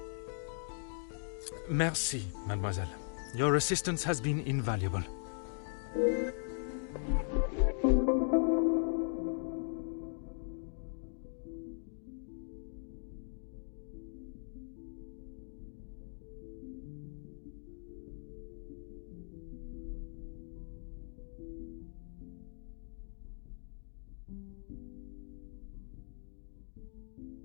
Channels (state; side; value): silent; right; digital silence